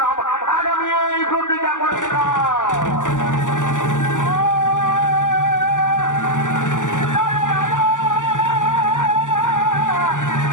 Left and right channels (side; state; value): right; late; 0.87 ms